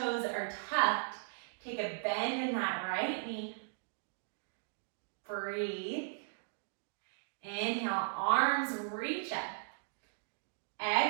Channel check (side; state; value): left; silent; digital silence